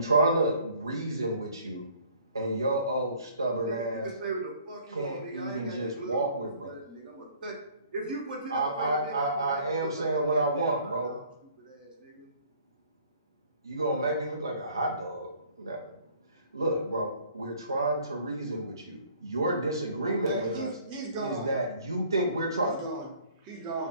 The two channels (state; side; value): inverted; both; correlation -0.56